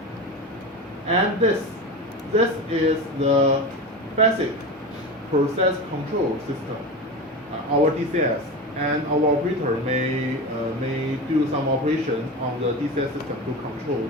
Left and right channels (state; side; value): normal; both; correlation 0.25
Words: And this is the basic process control system, our DCS, and our operator may do some operations on the DCS system to control